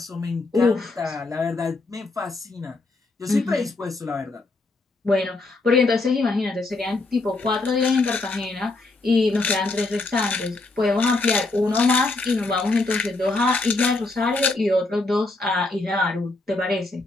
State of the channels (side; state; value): right; quieter; 3.3 dB